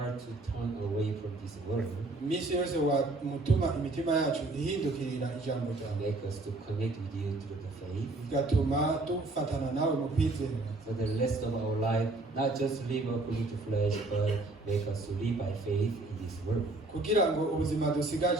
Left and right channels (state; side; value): quieter; left; 3.0 dB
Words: to turn away from this world, iminsi yose wamutuma imitima yacu ihindukirira ijambo ryawe, make us to connect with you through the faith, bigatuma dufatana nawe mu kwizera, so the rest of our life, not just live according to flesh, but make us to live by faith in this world. kugira ngo ubuzima